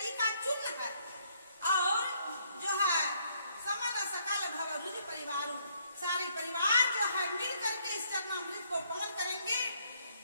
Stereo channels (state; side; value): inverted; both; correlation -0.69